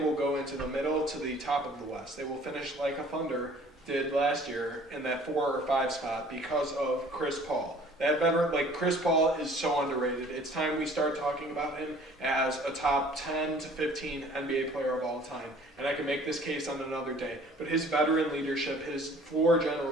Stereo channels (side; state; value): both; normal; correlation 0.52